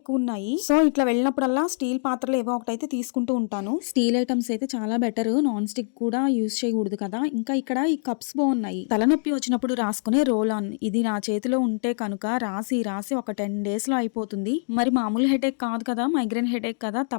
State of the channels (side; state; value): right; silent; digital silence